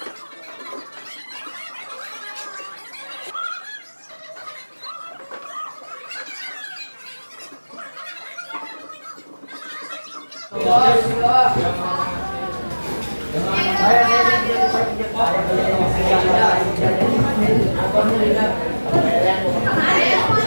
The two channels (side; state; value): both; inverted; correlation -1.00